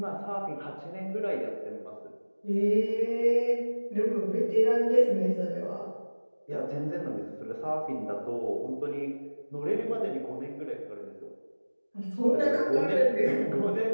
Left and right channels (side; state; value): both; inverted; correlation -1.00